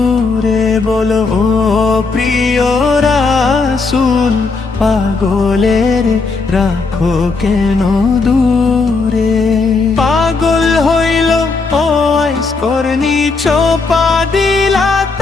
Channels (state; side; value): quieter; right; 4.2 dB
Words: বলো ও প্রিয় রাসূল পাগলের রাখো কেন দূরে পাগল হইল ও আইস করনি চোপা দিলা